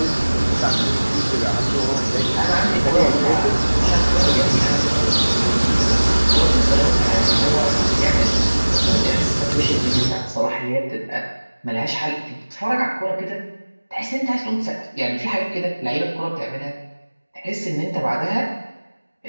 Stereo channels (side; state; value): both; inverted; correlation -1.00